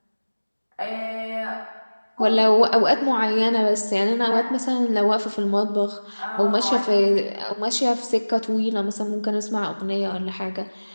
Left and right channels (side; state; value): both; inverted; correlation -1.00